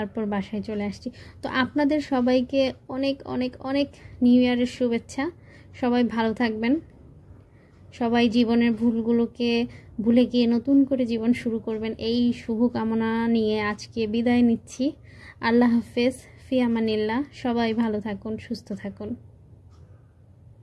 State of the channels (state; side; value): identical; both; correlation 1.00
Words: বাসায় চলে আসছি। তো আপনাদের সবাইকে অনেক অনেক অনেক নিউ ইয়ারের শুভেচ্ছা। সবাই ভালো থাকবেন, সবাই জীবনের ভুলগুলোকে ভুলে গিয়ে নতুন করে জীবন শুরু করবেন, এই শুভকামনা নিয়ে আজকে বিদায় নিচ্ছি। আল্লাহ হাফেজ, ফি আমানিল্লাহ। সবাই ভালো থাকুন, সুস্থ থাকুন,